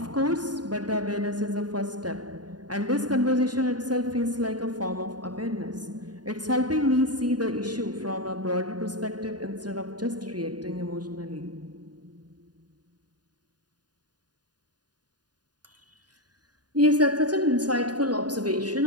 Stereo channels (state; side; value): late; left; 0.69 ms